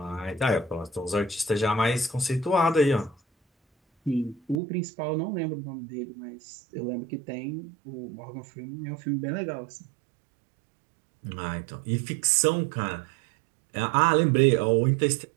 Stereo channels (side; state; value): left; drops out; at 4.6 s